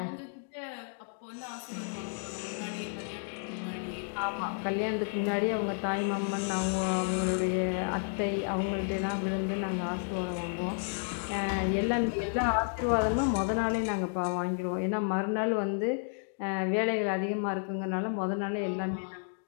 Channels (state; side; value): silent; right; 57 dB below the other